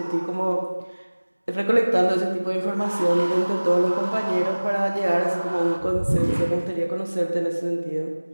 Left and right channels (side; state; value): both; inverted; correlation -1.00